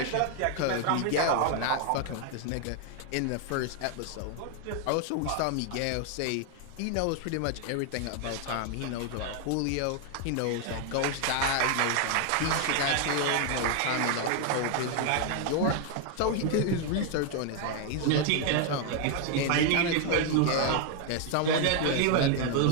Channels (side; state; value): both; different; correlation 0.00